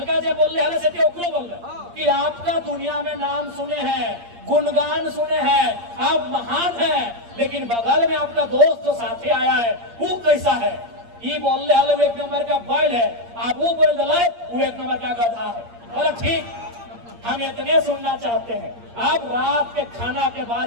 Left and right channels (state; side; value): late; left; 8.6 ms